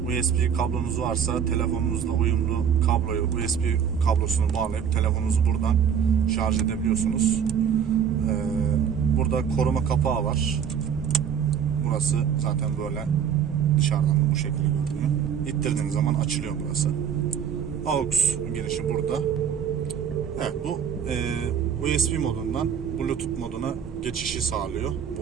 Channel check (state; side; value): quieter; left; 7.9 dB